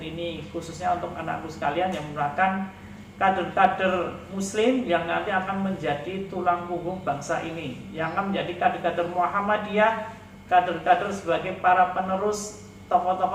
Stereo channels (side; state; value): both; identical; correlation 1.00